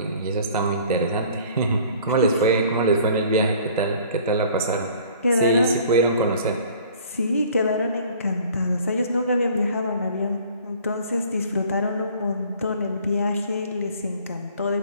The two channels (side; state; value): both; inverted; correlation -0.51